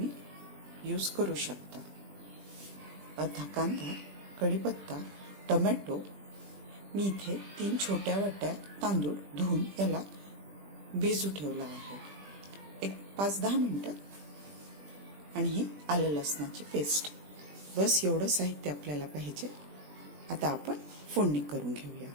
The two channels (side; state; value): left; late; 20 ms